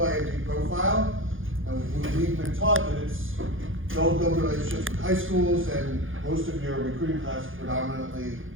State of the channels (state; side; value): late; left; 0.58 ms